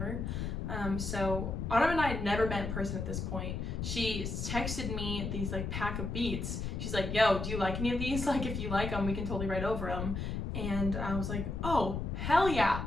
So Autumn and I had never met in person at this point. She texted me these like pack of beats. She's like, yo, do you like any of these? Like, if you like them, we can totally write over them. And I was like, oh, hell yeah.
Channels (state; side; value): noise; left; rumble, 3 dB below the sound